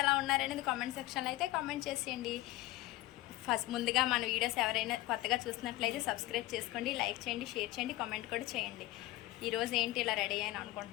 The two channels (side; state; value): right; quieter; 17.8 dB